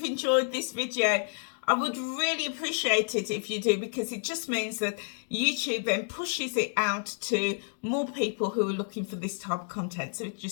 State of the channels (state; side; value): silent; right; digital silence